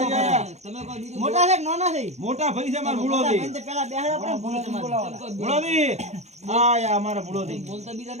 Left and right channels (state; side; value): late; left; 0.32 ms